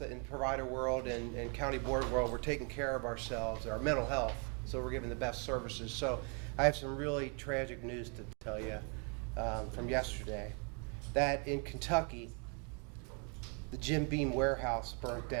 in provider world and county board world, we're taking care of ourselves, our mental health, so we're giving the best services. So I have some really tragic news to tell you from yesterday, that in Kentucky, the Jim Beam warehouse burnt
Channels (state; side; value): quieter; left; 36.9 dB